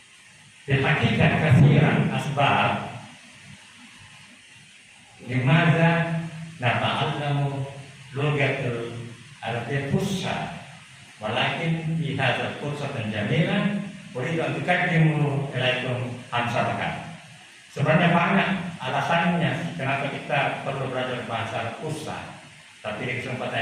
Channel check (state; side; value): identical; both; correlation 1.00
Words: Di hakikat kasiran asbab limadza nata'allamu lugatul Arabiyyah fusha walakin fi hadzal fursatan jamilan uridu an tuqaddimu ilaikum amsalakan. Sebenarnya banyak alasannya kenapa kita perlu belajar bahasa fusha, tapi di